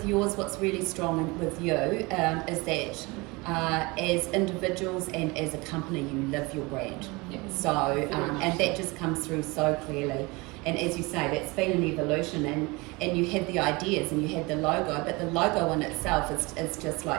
yours, what's really strong with you is that as individuals and as a company, you live your brand. So, and that just comes through so clearly. And as you say, that's been an evolution, and you had the ideas and you had the logo, but the logo in itself is just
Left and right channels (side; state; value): left; quieter; 25.0 dB